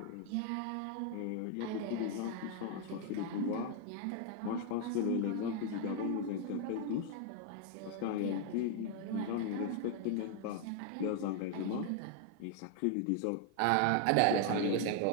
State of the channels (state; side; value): different; both; correlation 0.00